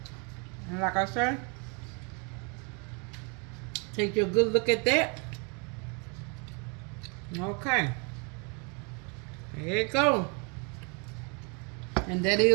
like I said, take your good look at that. Okay. There you go. And that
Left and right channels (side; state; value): left; quieter; 34.1 dB